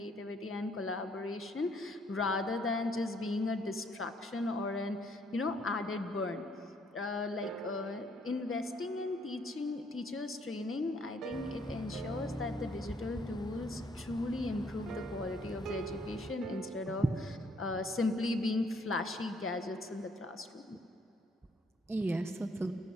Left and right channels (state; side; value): normal; both; correlation 0.67